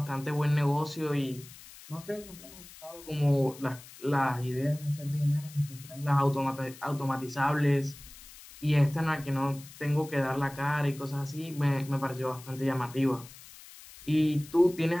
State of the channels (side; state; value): left; noise; hiss, 18 dB below the sound